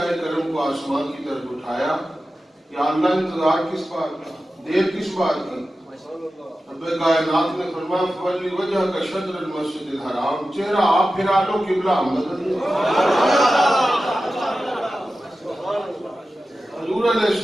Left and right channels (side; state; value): both; normal; correlation 0.94